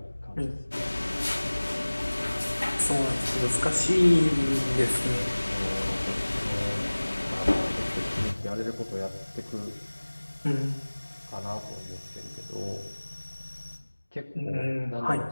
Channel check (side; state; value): both; inverted; correlation -1.00